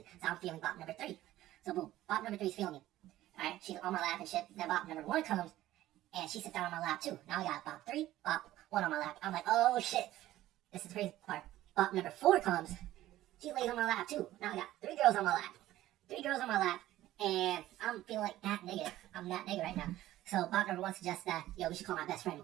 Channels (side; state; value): left; quieter; 14.8 dB